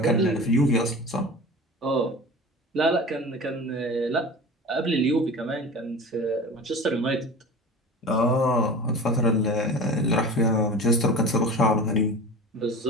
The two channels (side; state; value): both; normal; correlation 0.35